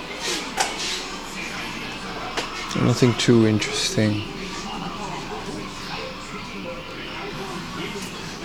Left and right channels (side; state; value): both; identical; correlation 1.00